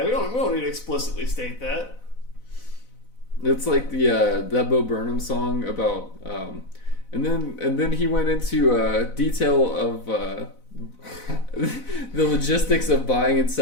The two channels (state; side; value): late; right; 4.0 ms